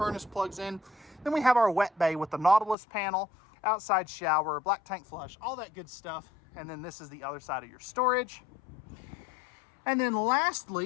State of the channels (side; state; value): right; drops out; at 2.8 s